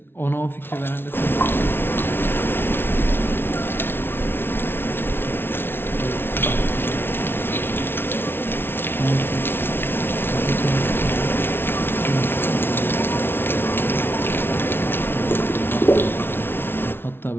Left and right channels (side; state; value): right; late; 0.11 ms